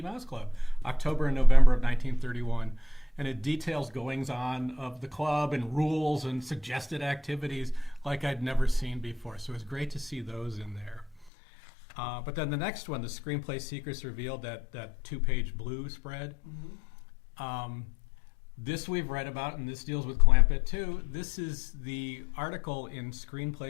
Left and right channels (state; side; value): drops out; right; at 11.3 s